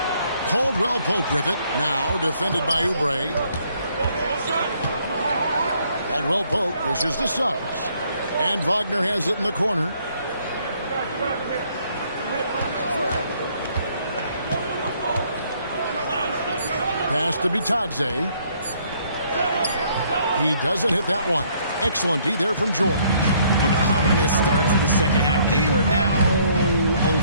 Caldwell Pope with it. Now defended by Oubre. Caldwell Pope dishes to Suggs. And Wagner has it in the corner. Pass to Bitadze. He doesn't hit that one. Excellent D there from George. And ominous start to the second half. They are now 0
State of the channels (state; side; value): inverted; both; correlation -0.65